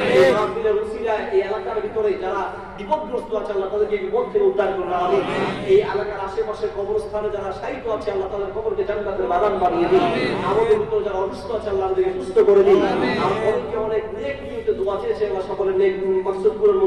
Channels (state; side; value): identical; both; correlation 1.00